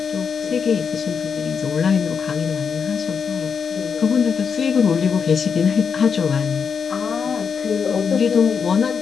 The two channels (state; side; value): quieter; right; 6.3 dB